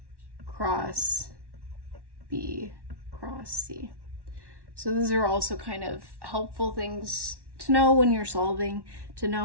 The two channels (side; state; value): left; late; 1.1 ms